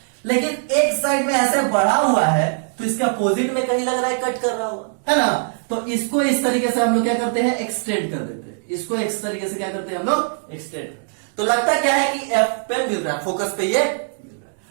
लेकिन एक साइड में ऐसे बढ़ा हुआ है तो इसका अपोजिट में कहीं लग रहा है कट कर रहा होगा, है ना? तो इसको इस तरीके से हम लोग क्या करते हैं? एक्सटेंड कर देते हैं। इसको इस तरीके से क्या करते हैं हम लोग? एक्सटेंड। तो लगता क्या है कि F पे मिल रहा है, फोकस पे ये मिल रहा है।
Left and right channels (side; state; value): left; silent; digital silence